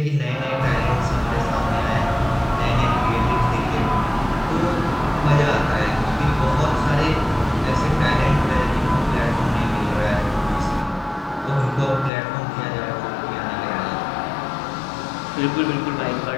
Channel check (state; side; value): drops out; right; at 12.1 s